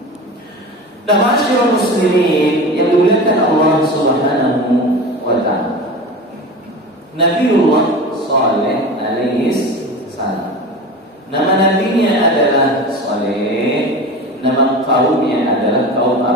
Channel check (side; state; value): both; normal; correlation 0.31